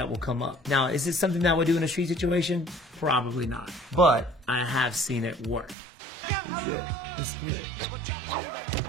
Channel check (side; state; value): left; drops out; at 5.8 s